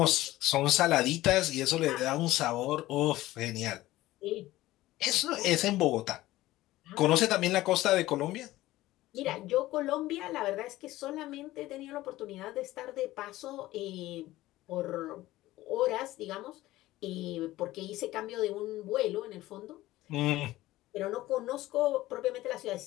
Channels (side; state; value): right; quieter; 16.7 dB